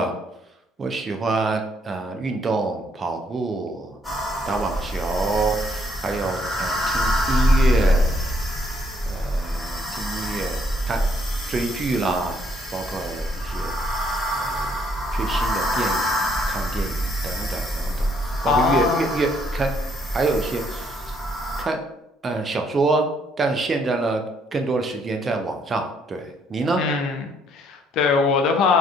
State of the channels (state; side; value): normal; both; correlation 0.69